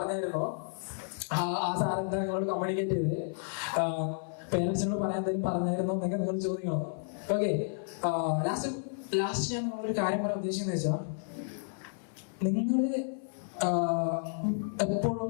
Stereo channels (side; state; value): right; silent; 57 dB below the other